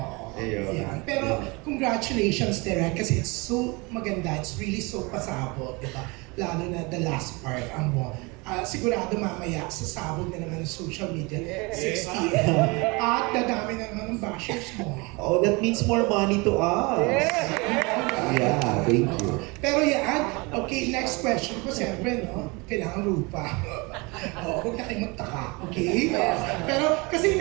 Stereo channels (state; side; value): quieter; left; 27.0 dB